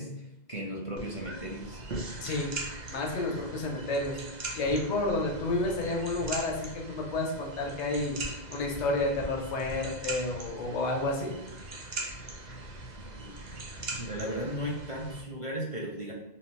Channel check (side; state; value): right; late; 2.0 ms